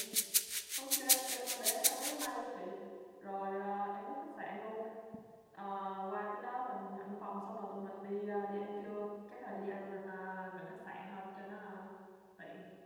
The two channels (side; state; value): both; identical; correlation 1.00